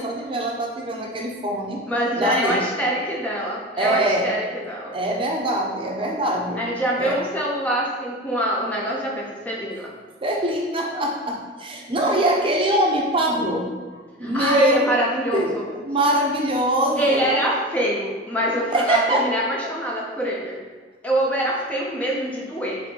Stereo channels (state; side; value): normal; both; correlation 0.28